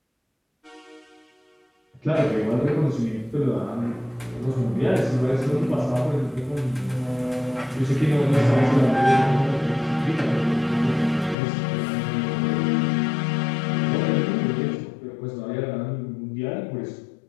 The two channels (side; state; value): right; drops out; at 11.4 s